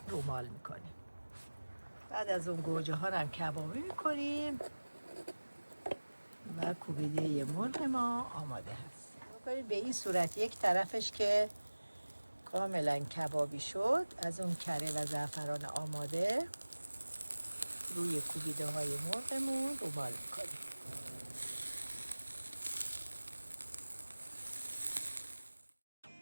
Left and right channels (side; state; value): both; inverted; correlation -1.00